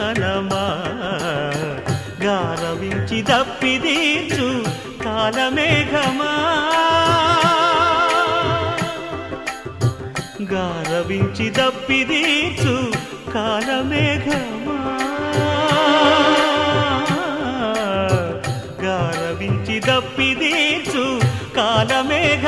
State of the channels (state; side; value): identical; both; correlation 1.00